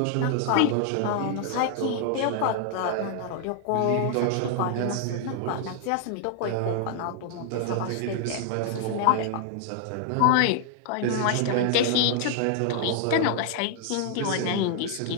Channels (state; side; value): different; both; correlation 0.00